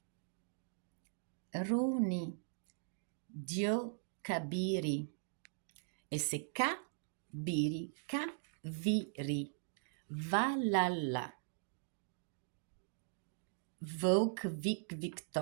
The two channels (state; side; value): silent; left; digital silence